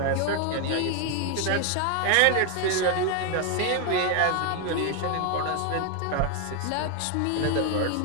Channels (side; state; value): both; different; correlation 0.01